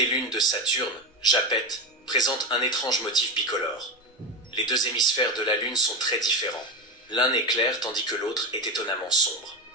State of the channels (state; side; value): normal; both; correlation 0.16